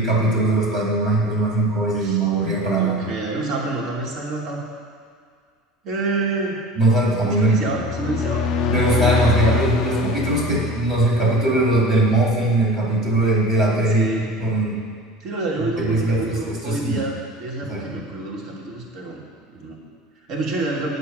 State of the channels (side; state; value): both; normal; correlation 0.37